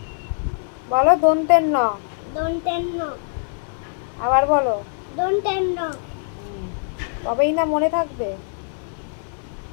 বলো দন্তের ন, দন্তের ন, আবার বলো দন্তের ন। তবেই না মনে থাকবে।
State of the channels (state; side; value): silent; right; 64 dB below the other